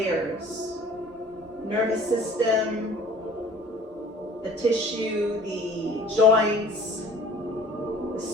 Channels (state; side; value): normal; both; correlation 0.49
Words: Nervous system, the tissue, the joints, the